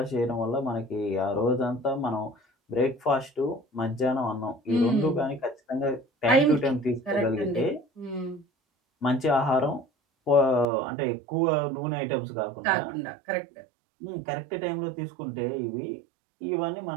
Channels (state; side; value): drops out; left; at 10.7 s